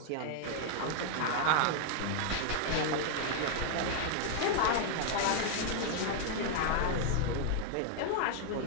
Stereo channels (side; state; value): both; different; correlation 0.00